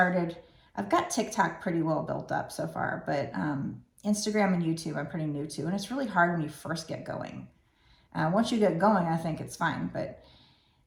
I've got TikTok pretty well built up so far, but Instagram and YouTube I'm pretty new to, and it's really hard when you first get going. Once you get going, I think it's fine, but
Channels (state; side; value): identical; both; correlation 1.00